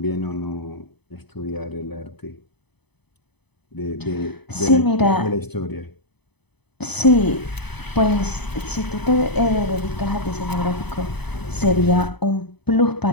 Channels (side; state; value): right; late; 0.98 ms